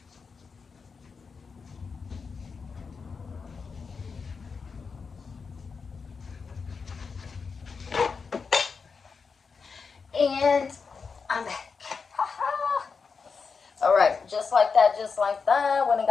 And I'm back. Alright, just like that, just like that. When I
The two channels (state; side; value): quieter; right; 5.2 dB